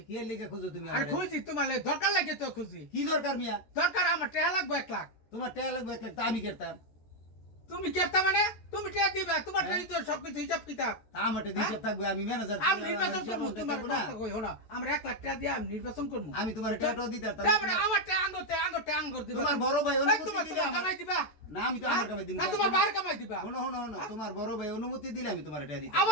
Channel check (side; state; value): right; late; 14 ms